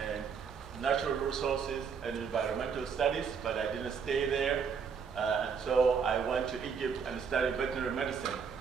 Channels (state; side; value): quieter; left; 6.3 dB